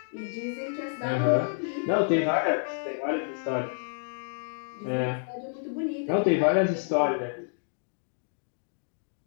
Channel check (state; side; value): silent; right; digital silence